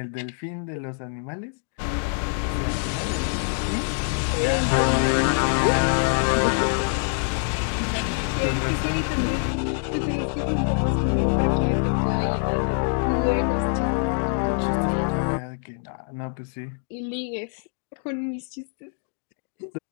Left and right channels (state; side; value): silent; right; 62 dB below the other